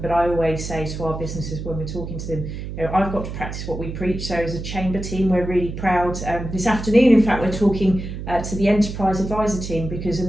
But I always say to our businesses when we're talking to them, I've got to practice what we preach. So as a chamber team, we're really proud. This afternoon, in fact, we're talking to the enterprise advisor team, because a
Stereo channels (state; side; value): noise; right; hum, 7 dB below the sound